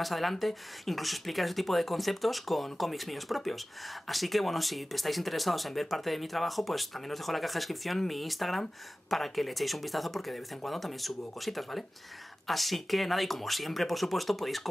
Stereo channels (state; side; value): normal; both; correlation 0.97